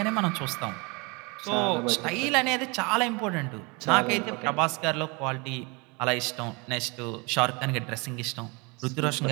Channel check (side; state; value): left; quieter; 28.9 dB